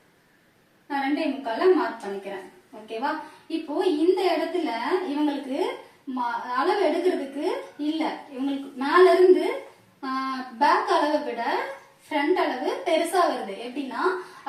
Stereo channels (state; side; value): identical; both; correlation 1.00